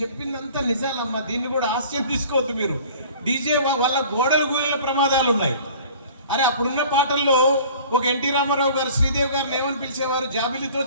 చెప్పిందంతా నిజాలమ్మా, దీన్ని కూడా హాస్యం తీసుకోవద్దు మీరు. డీజే వల్ల గోడలు గూలిన ప్రమాదాలు ఉన్నాయి. అరే అప్పుడున్న పాటల్లో ఒక ఎన్టీ రామారావు గారు శ్రీదేవి గారిని ఏమని పిలిచేవారు, జాబిలితో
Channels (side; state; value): both; inverted; correlation -0.47